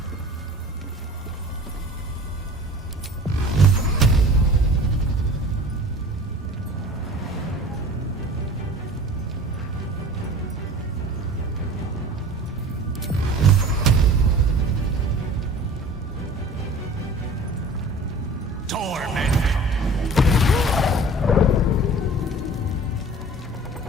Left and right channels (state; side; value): normal; both; correlation 0.42